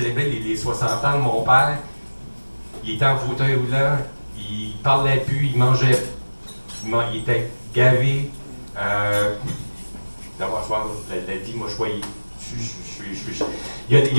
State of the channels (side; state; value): both; inverted; correlation -1.00